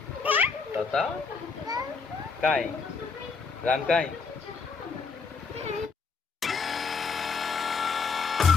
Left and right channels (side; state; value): right; quieter; 5.0 dB